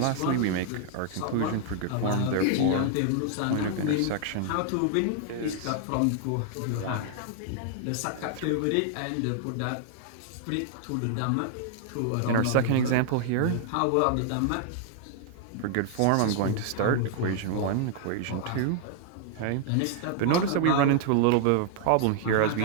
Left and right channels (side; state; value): both; different; correlation 0.00